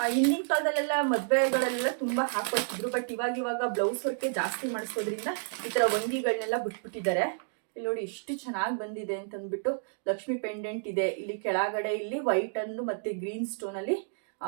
ಹಿಂದಿನ ಕಾಲದಲ್ಲೆಲ್ಲ ಮದುವೆಗಳೆಲ್ಲ ತುಂಬ ಹಾಕೊಳ್ತಿದ್ರು, ಬಟ್ ಇವಾಗ ಬ್ಲೌಸ್ ವರ್ಕೆ ಜಾಸ್ತಿ ಮಾಡಿಸೋದ್ರಿಂದ ಈ ಥರ ವಂಗಿಗಳನ್ನೆಲ್ಲ ಬಿಟ್ಬಿಟ್ಟಿದ್ದಾರೆ. ಇಲ್ಲಿ ನೋಡಿ ಎಷ್ಟು ಚೆನ್ನಾಗಿ ಬಂದಿದೆ ಅಂತಂದ್ಬಿಟ್ಟು. ಲಕ್ಷ್ಮಿ ಪೆಂಡೆಂಟ್ ಇದೆ ಇಲ್ಲಿ ಕೆಳಗಡೆ. ಇಲ್ಲಿ ವೈಟ್ ಅನ್ನು ಮತ್ತೆ ಗ್ರೀನ್ ಸ್ಟೋನ್ ಅಲ್ಲಿ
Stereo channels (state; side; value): silent; left; digital silence